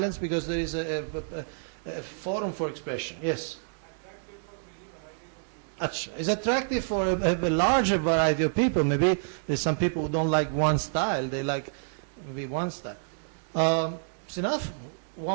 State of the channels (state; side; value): silent; left; digital silence